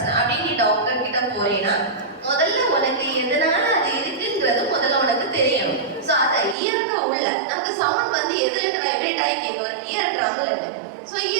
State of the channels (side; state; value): left; drops out; at 6.6 s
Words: அப்படின்னு நீ டாக்டர் கிட்ட போறீங்கன்னா முதல்ல உனக்கு எதனால அது இருக்குன்றது முதல்ல உனக்கு தெரியணும். ஸோ அதை இயற்க உள்ள நமக்கு சவுண்ட் வந்து எதுல வைப்ரேட் ஆகி கேட்கும்? இயர் ட்ரம்ல இருக்கு. ஸோ